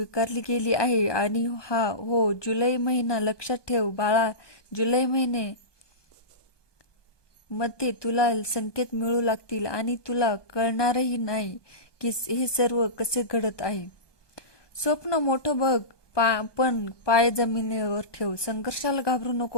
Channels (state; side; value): late; right; 1.2 ms